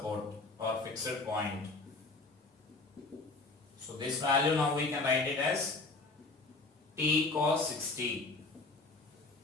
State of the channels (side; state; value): right; quieter; 3.4 dB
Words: or fixed point. So this value now we can write it as T cos 60.